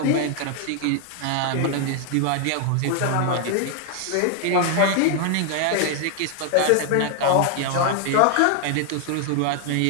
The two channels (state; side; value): different; both; correlation 0.00